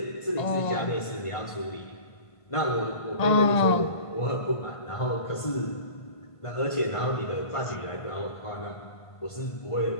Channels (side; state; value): right; late; 1.5 ms